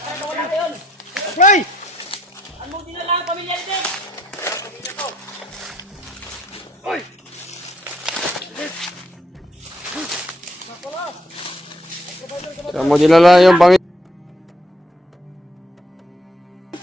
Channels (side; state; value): both; normal; correlation 0.72